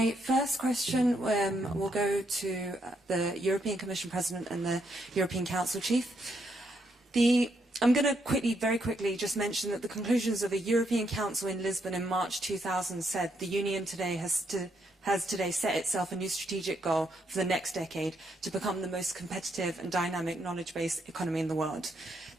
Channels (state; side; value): normal; both; correlation 0.77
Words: first question will go to the European Commission President and the European Council Chief. I'm going to very quickly just mention that the conclusions of a European Council in Lisbon in March 2000 said the Union today has today set itself a new strategic goal for the next decade to become the most competitive and dynamic knowledge-based economy in the world.